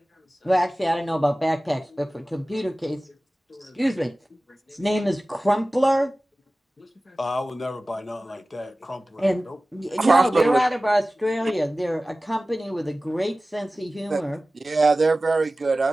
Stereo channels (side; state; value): both; normal; correlation 0.97